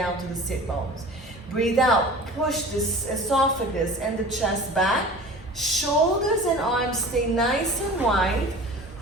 to the sit bones. Breathe out, push the esophagus and the chest back. Shoulders and arms stay nice and wide.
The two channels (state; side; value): normal; both; correlation 0.40